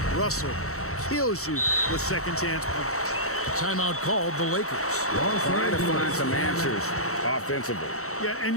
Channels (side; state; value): right; late; 0.64 ms